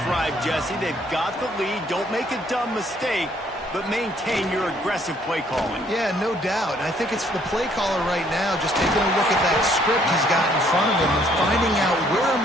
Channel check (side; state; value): both; normal; correlation 0.65